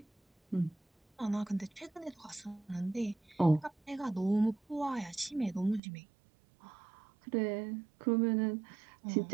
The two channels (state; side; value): drops out; left; at 5.8 s